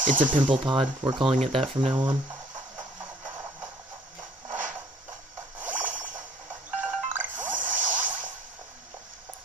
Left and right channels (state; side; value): normal; both; correlation 0.58